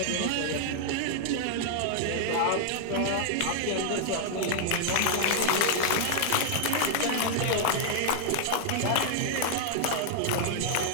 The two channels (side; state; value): both; different; correlation -0.01